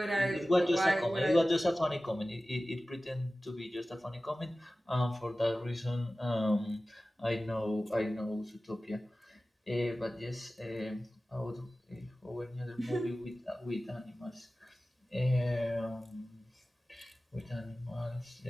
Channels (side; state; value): both; normal; correlation 0.96